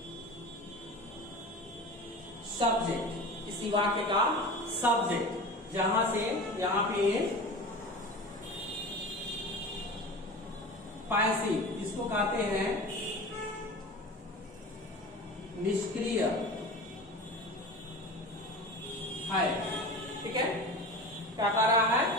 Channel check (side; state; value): both; normal; correlation 0.33